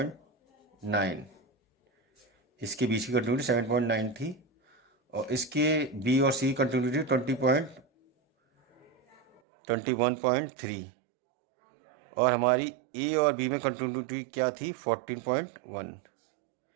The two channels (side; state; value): left; drops out; at 9.4 s